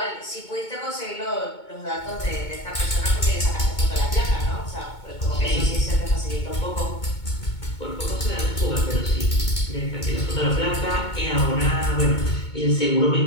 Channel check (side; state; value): right; late; 2.2 ms